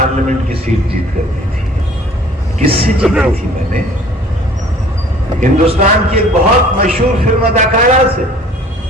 کی سیٹ جیت کر دی تھی. کس سے جیتی تھی میں نے؟ ہندوستان کی ایک بہت مشہور فلم اداکارہ سے،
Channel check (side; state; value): both; normal; correlation 0.51